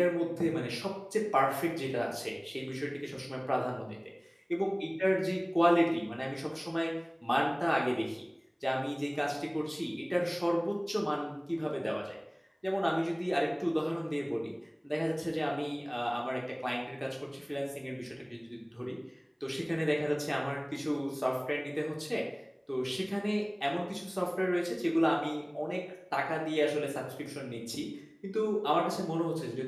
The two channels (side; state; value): both; identical; correlation 1.00